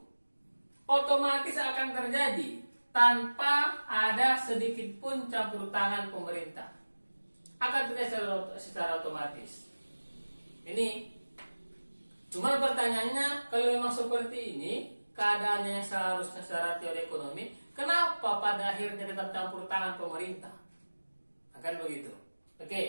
Otomatis akan terjadi tanpa ada sedikit pun campur tangan pemerintah. Akan terjadi secara otomatis. Ini cuma pertanyaannya, kalau memang seperti ini keadaannya seharusnya secara teori ekonomi, kenapa pada akhirnya tetap campur tangan pemerintah? Akan begitu.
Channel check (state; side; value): inverted; both; correlation -1.00